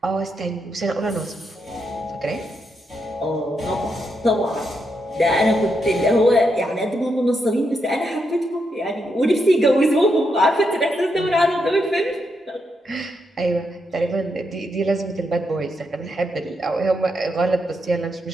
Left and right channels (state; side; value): normal; both; correlation 0.82